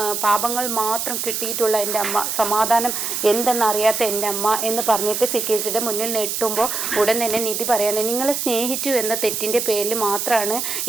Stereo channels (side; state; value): right; noise; hiss, 2 dB below the sound